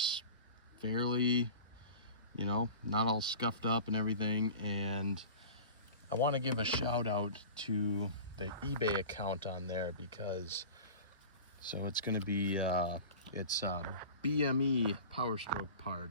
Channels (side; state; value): both; inverted; correlation -0.37